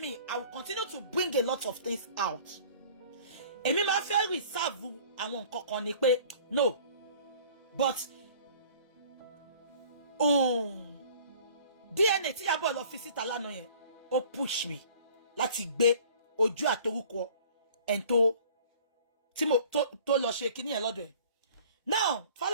I will continue to bring a lot of things out. Èmi máa fẹ́ reserve àwọn nǹkan kan ni pé no, but DNA tí Ìyábọ̀ lọ fi síta lánàá yẹn ó push me láti gbé ojú àtorúkọ ẹni tó lọ ṣe kíní yẹn lọ́dọ̀ ẹ̀. Now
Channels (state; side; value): inverted; both; correlation -0.50